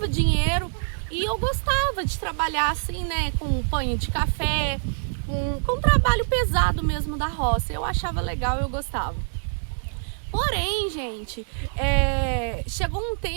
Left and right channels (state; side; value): silent; left; digital silence